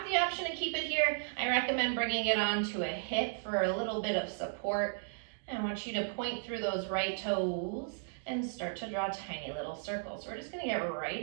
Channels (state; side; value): silent; left; digital silence